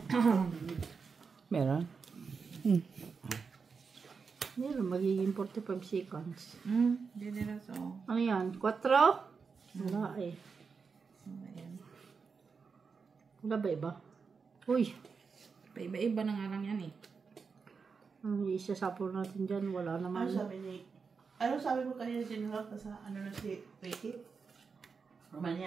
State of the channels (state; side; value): quieter; left; 5.3 dB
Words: Meron? Meron, magiging 45 seconds. Hindi na so. Ano yan? 4? Wala eh. Ayan. Wala ba iba? Uy! Paiba-iba na nga lang yan eh. Ang isasapol natin dyan, wala naman. Ano sabi mo kanina sinulak na sa ano na si Ricky?